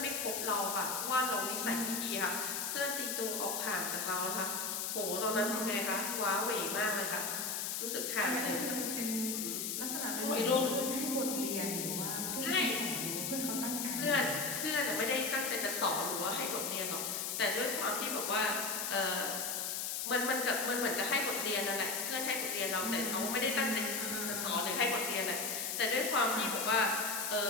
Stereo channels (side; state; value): left; noise; hiss, 2 dB below the sound